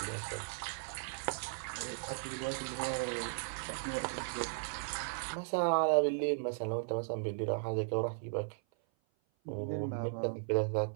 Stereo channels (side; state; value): left; silent; 53 dB below the other